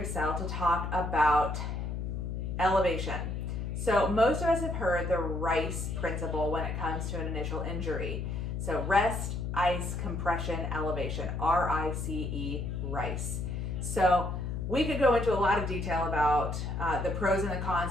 to talk about elevation. So most of us have heard the RICE principle when it comes to an initial injury. So rest, ice, compression, elevation, R-I-C-E, RICE. So we could go into a lot of detail about the pros and the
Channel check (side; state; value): left; noise; hum, 3 dB below the sound